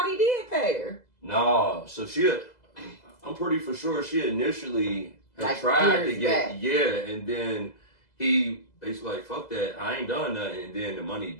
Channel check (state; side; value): late; right; 2.0 ms